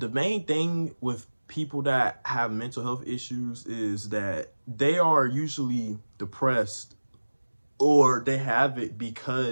main thing with people that have mental health issues is that they are usually depressed, or they have it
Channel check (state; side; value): inverted; both; correlation -1.00